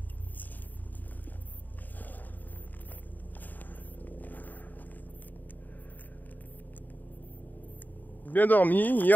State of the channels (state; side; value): late; right; 0.086 ms